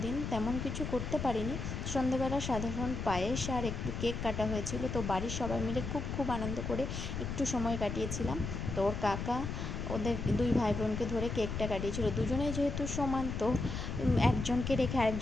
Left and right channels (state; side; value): noise; left; rumble, 4 dB below the sound